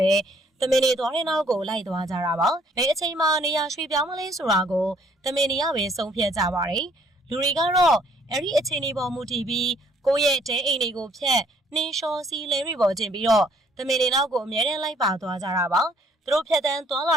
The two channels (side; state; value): both; normal; correlation 0.63